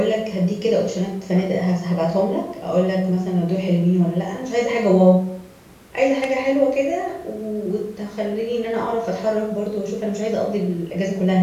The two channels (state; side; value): identical; both; correlation 1.00